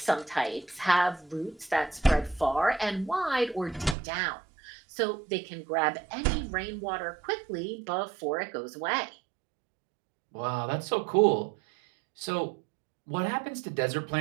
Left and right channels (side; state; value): left; drops out; at 4.0 s